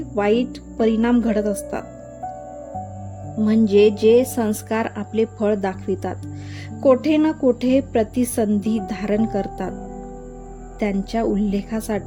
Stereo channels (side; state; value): both; identical; correlation 1.00